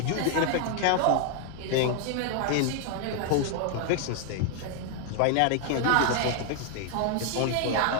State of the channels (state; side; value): different; both; correlation 0.00